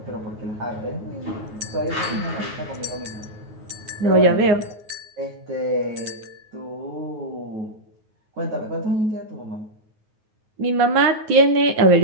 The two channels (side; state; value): left; late; 9.4 ms